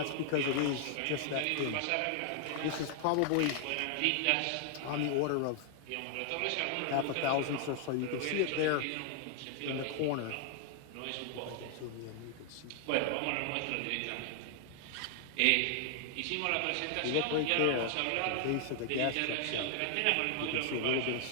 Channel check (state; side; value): different; both; correlation 0.00